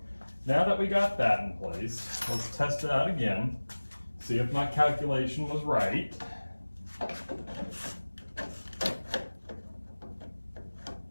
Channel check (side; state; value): both; inverted; correlation -1.00